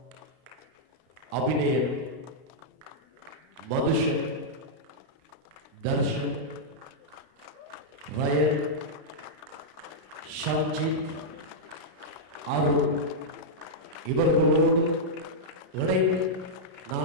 அபிநயன், மதுஷன், தர்ஷன், ரயன், ஷாஞ்சித், அருண் இவர்களோடு இணைந்து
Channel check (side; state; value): left; late; 32 ms